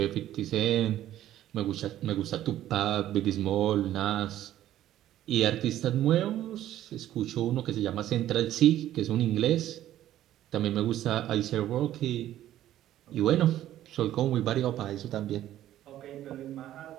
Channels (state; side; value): quieter; left; 12.9 dB